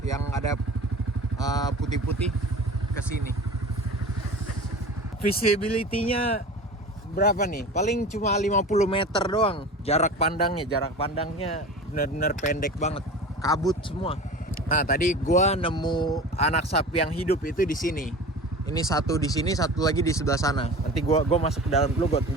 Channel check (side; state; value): both; normal; correlation 0.36